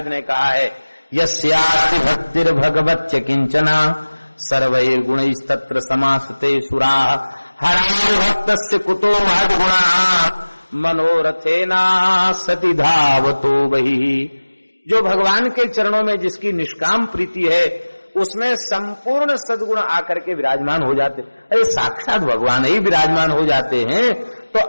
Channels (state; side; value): inverted; both; correlation -1.00